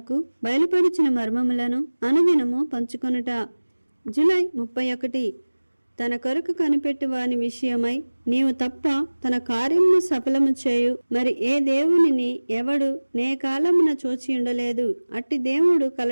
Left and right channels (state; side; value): inverted; both; correlation -1.00